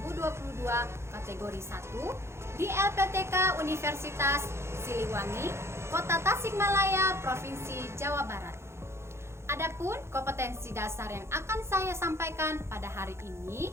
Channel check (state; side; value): late; left; 0.13 ms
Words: kategori 1 di LPTK Universitas Siliwangi, Kota Tasikmalaya, Provinsi Jawa Barat. Adapun kompetensi dasar yang akan saya sampaikan pada hari